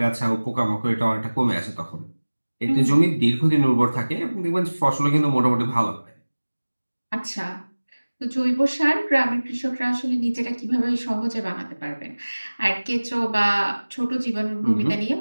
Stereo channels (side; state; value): both; inverted; correlation -1.00